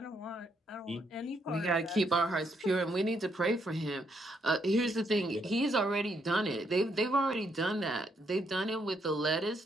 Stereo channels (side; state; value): both; normal; correlation 0.75